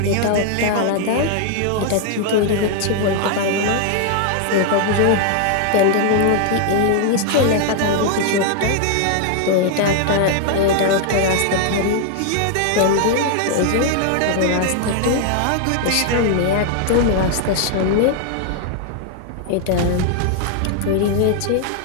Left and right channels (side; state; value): both; different; correlation 0.00